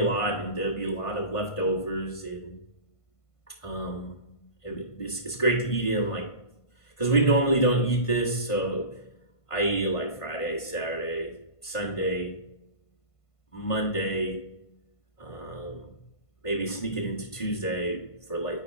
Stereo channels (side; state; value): right; late; 1.5 ms